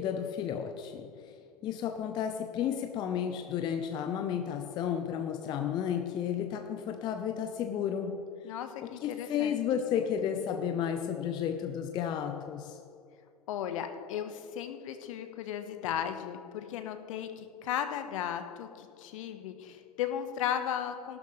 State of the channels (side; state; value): right; quieter; 8.5 dB